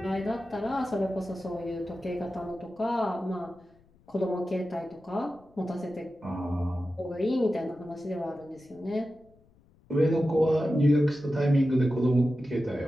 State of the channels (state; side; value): noise; left; rumble, 30 dB below the sound